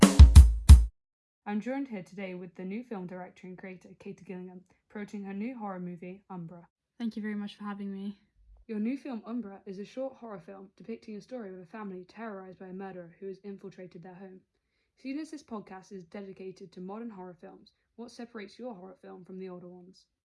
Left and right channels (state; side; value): identical; both; correlation 1.00